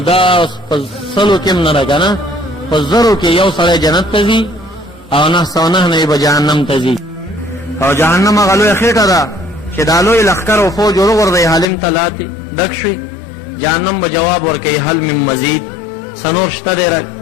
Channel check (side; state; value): right; drops out; at 11.7 s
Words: په سلو کې هم نه ده که نه، په زرو کې یو سړی جنت ته ځي او 909 نه به جهنم ته ځي. او جهنم هغه لویه خېټه ده چې دا لوی لښکر او فوج وروغورځوي هالند ته لاتې ډک شوي. جهنم به جواب ورکوي هل من مزید، سنور شته دی